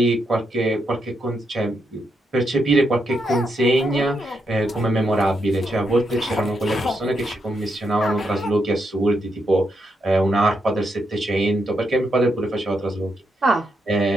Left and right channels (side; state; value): both; normal; correlation 0.81